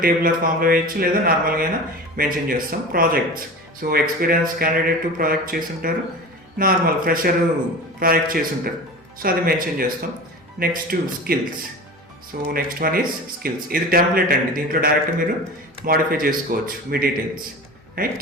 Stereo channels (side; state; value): both; normal; correlation 0.33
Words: టేబులర్ ఫామ్లో వేయచ్చు, లేదా నార్మల్గా అయినా మెన్షన్ చేస్తాం. Projects, so experience candidate project చేస్తుంటారు, నార్మల్ ఫ్రెషర్ ప్రాజెక్ట్ చేస్తుంటారు, సో అది మెన్షన్ చేస్తాం. Next skills. So next one is skills. ఇది టెంప్లెట్ అండి, దీంట్లో డైరెక్ట్ మీరు మాడిఫై చేసుకోవచ్చు మీ డీటెయిల్స్,